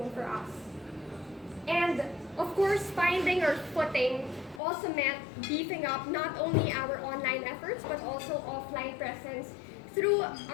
for us. And of course, finding our footing also meant beefing up not only our online efforts, but also offline presence through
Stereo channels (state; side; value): drops out; right; at 4.6 s